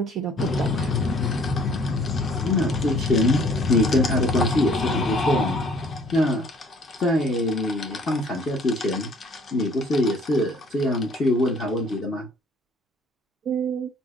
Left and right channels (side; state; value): both; normal; correlation 0.57